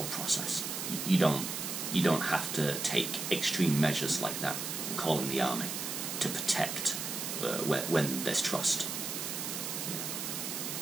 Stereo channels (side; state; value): right; noise; hiss, 4 dB below the sound